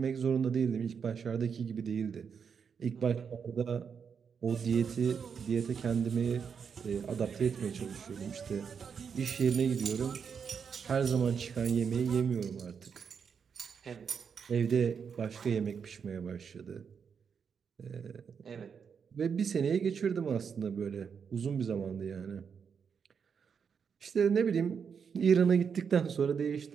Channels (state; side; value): quieter; left; 6.6 dB